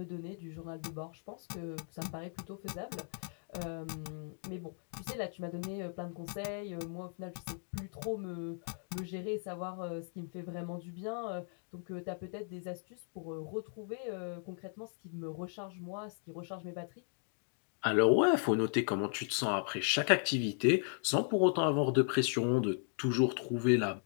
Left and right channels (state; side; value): silent; right; 53 dB below the other